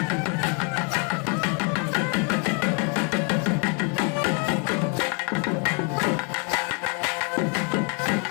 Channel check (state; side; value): quieter; right; 34.9 dB